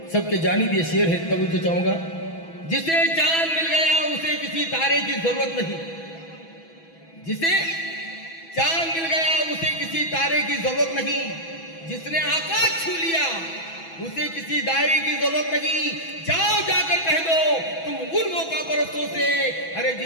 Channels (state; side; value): late; right; 6.1 ms